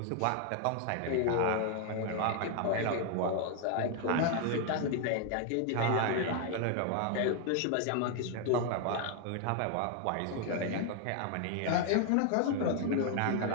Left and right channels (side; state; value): both; different; correlation 0.00